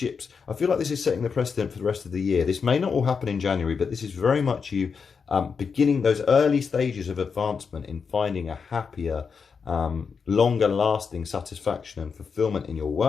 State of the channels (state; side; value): quieter; right; 5.7 dB